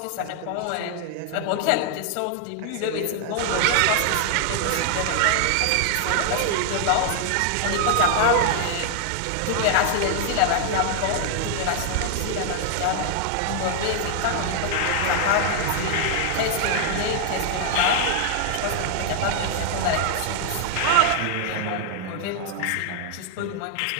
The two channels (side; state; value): both; different; correlation 0.00